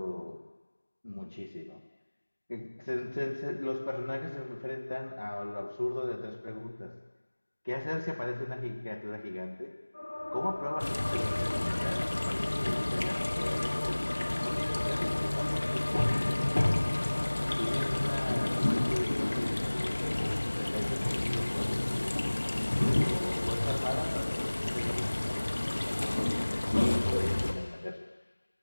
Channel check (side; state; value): both; inverted; correlation -1.00